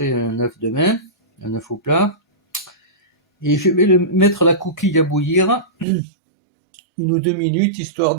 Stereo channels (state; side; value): drops out; left; at 5.9 s